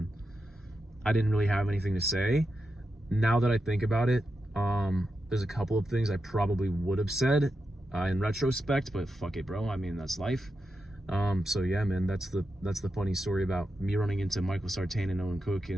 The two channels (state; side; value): normal; both; correlation 0.88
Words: I didn't really have anything to say. Now that I think about it, there's a couple of things I probably would have said in retrospect, but fuck it, bro. I mean, that's life. So yeah, man, that's the funny story about me running into Michael Sartain and Owen Cook